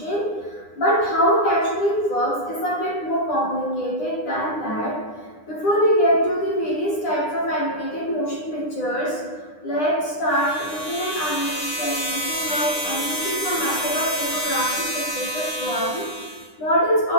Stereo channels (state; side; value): late; right; 9.9 ms